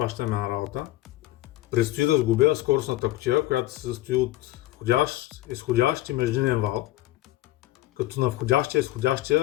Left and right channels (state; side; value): quieter; right; 16.2 dB